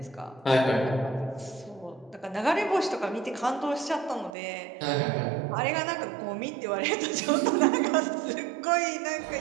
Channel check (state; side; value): drops out; left; at 4.4 s